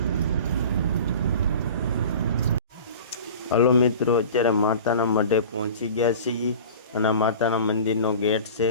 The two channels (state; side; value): inverted; both; correlation -0.39